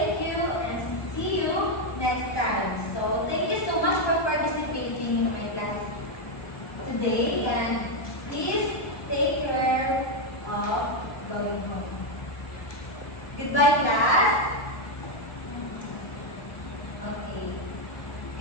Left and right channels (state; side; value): late; right; 1.2 ms